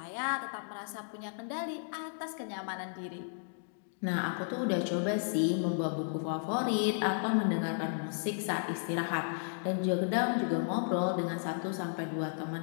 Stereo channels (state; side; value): silent; right; digital silence